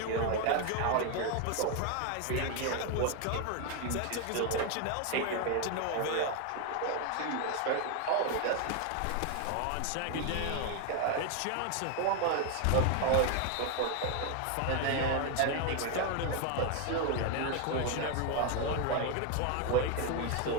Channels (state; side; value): different; both; correlation 0.01